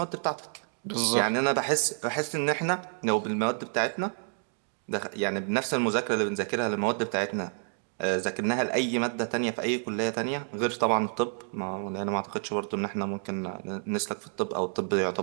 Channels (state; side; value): silent; left; 56 dB below the other